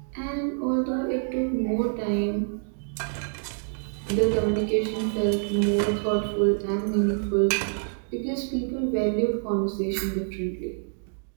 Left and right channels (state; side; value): silent; left; digital silence